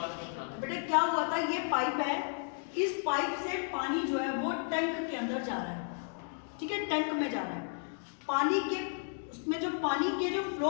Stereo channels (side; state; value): right; silent; 56 dB below the other